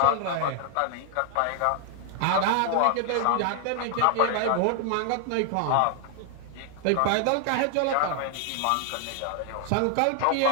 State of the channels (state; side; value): different; both; correlation 0.00